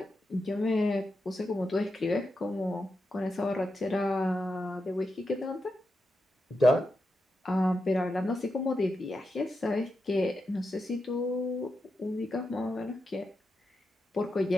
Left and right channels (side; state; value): both; normal; correlation 0.87